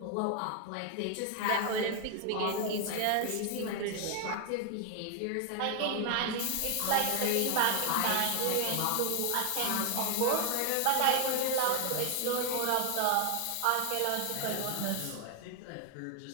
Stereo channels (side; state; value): both; different; correlation 0.00